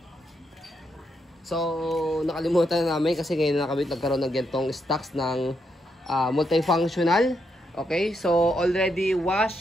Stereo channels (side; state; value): both; normal; correlation 0.80